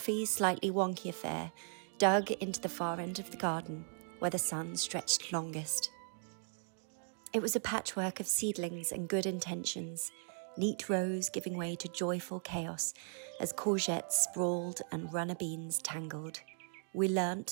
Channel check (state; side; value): silent; left; 53 dB below the other